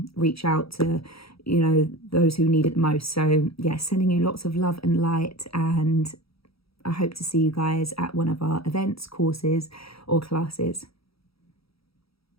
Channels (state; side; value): late; right; 0.76 ms